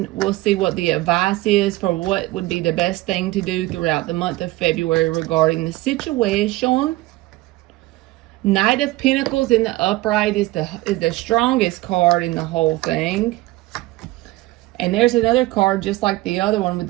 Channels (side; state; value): left; quieter; 18.9 dB